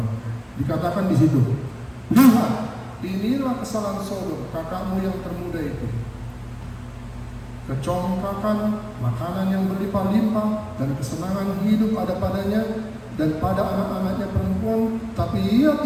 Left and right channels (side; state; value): both; identical; correlation 1.00